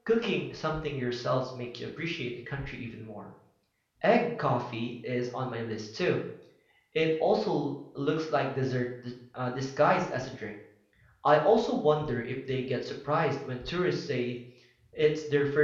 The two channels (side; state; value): both; identical; correlation 1.00